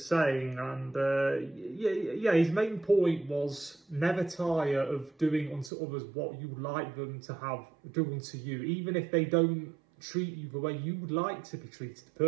saying, and yeah, his main point was never tire of doing unto others what you would like them to have do unto you, even if they don't treat you the way you would like to be treated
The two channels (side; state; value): left; drops out; at 5.7 s